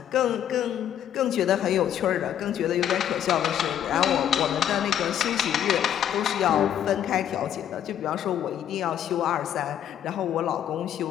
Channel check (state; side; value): quieter; right; 10.2 dB